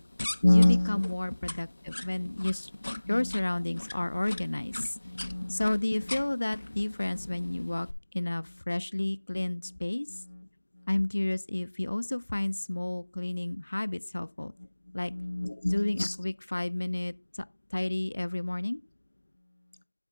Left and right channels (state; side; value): inverted; both; correlation -1.00